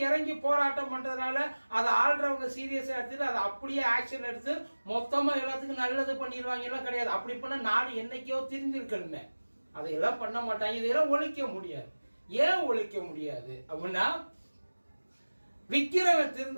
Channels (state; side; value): inverted; both; correlation -1.00